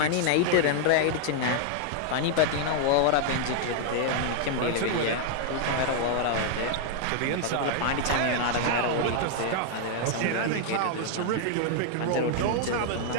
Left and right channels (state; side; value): different; both; correlation 0.00